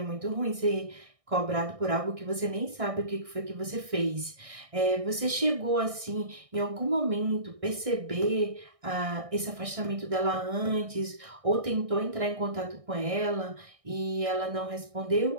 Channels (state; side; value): late; left; 1.6 ms